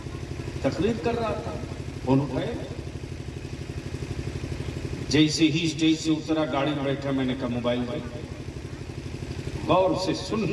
تقریر کر رہا تھا, فون اٹھائے, جیسے ہی اسٹیج سے اترا گاڑی میں بیٹھا, میں نے کہا موبائل بھائی غور سے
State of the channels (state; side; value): identical; both; correlation 1.00